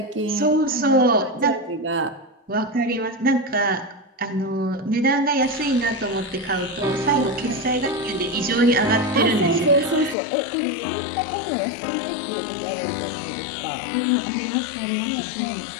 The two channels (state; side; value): drops out; right; at 10.2 s